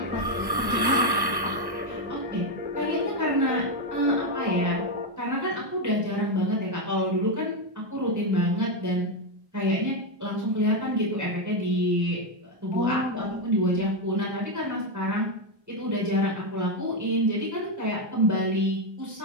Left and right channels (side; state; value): left; late; 1.1 ms